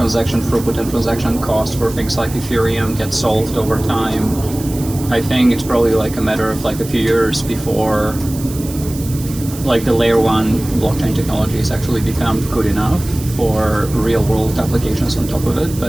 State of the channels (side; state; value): right; noise; hiss, 14 dB below the sound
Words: throughput and transaction cost for things like Ethereum get solved over time, I think it's probably like a matter of like a few years before like the layer 1 blockchain technologies actually become good enough for real world applications on top of it.